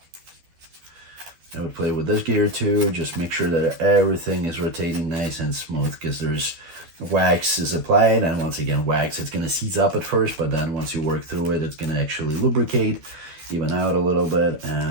I would play with this gear too, just make sure that everything is rotating nice and smooth, because there's wax is applied, and once again, wax, it's going to seize up at first, but then once you work through it, it's going to actually lubricate, even out a little bit,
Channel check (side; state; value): left; late; 12 ms